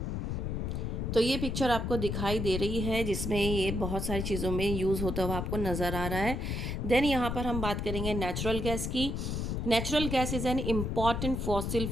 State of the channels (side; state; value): left; noise; rumble, 2 dB below the sound